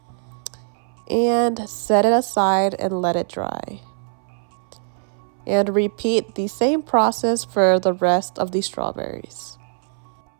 and set it aside and let it dry. And repeat the same process for the rest of the strawberries.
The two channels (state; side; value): silent; left; 64 dB below the other